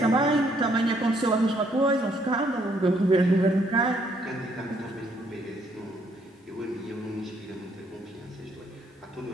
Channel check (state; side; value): normal; both; correlation 0.69